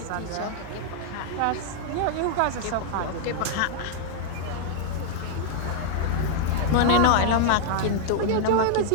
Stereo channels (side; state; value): both; different; correlation 0.00